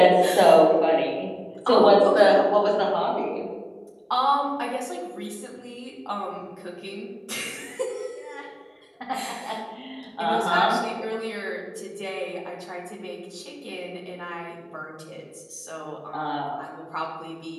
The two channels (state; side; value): identical; both; correlation 1.00